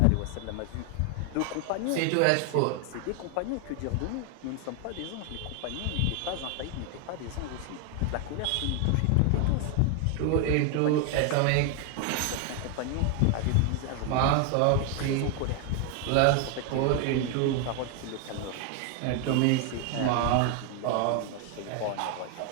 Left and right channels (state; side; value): different; both; correlation 0.01